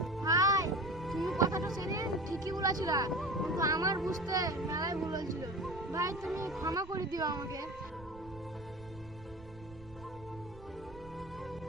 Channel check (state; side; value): noise; right; rumble, 19 dB below the sound